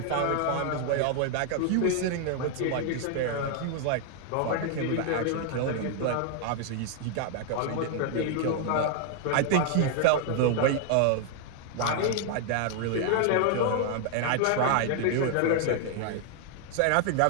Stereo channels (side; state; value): both; different; correlation 0.00